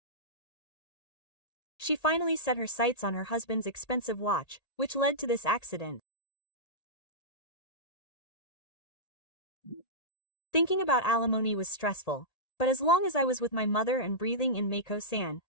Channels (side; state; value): right; late; 1.8 ms